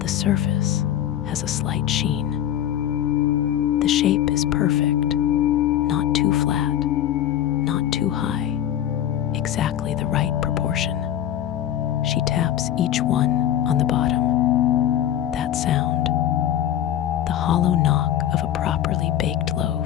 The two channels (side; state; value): right; quieter; 11.2 dB